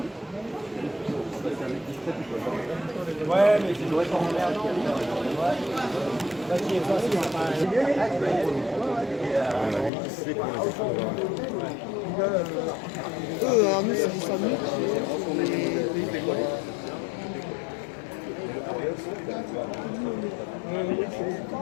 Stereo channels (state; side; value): drops out; right; at 9.9 s